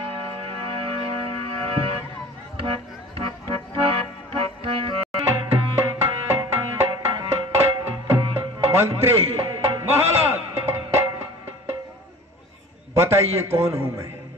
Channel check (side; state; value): both; normal; correlation 0.42